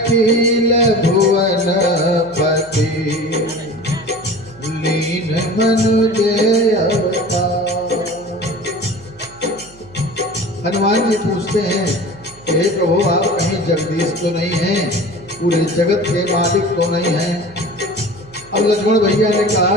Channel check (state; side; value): noise; right; hum, 25 dB below the sound